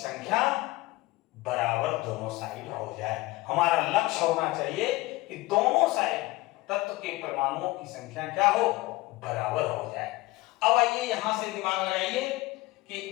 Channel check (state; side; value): quieter; right; 20.4 dB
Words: बराबर दोनों साइड हो जाए। हमारा लक्ष्य होना चाहिए कि दोनों साइड तत्व के परमाणुओं की संख्या क्या हो, बराबर हो जाए। अब आइए यहां से दिमाग लगाइए कि